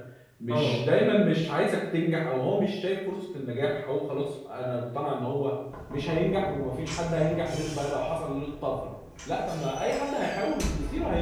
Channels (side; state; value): both; identical; correlation 1.00